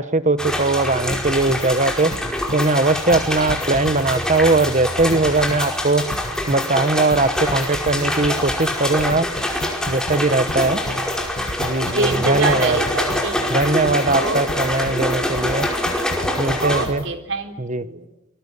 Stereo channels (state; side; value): normal; both; correlation 0.28